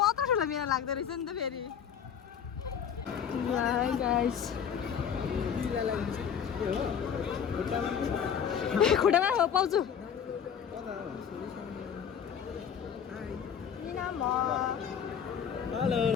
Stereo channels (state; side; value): quieter; right; 7.9 dB